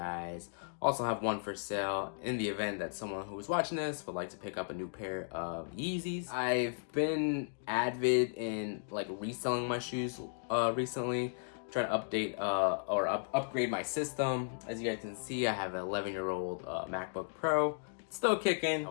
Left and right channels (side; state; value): right; silent; digital silence